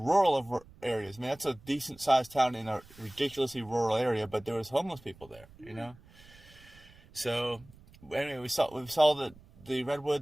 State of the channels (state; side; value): noise; right; rumble, 23 dB below the sound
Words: of areas. I mean, that's a decent-sized town in a ridiculously rural area, but there was homeless people there, you know? So, anyway, we saw the